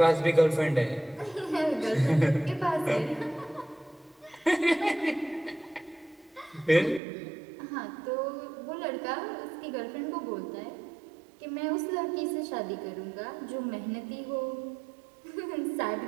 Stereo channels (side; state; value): left; drops out; at 7.0 s